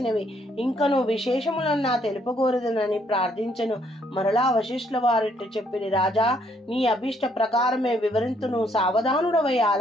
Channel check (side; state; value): both; normal; correlation 0.69